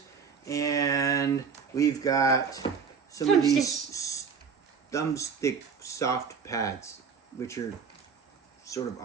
And we've got some of these thumbstick soft pads, which are sort of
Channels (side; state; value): left; quieter; 6.1 dB